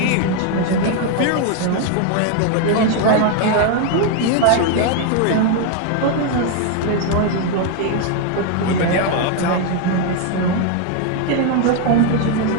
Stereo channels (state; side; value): different; both; correlation 0.01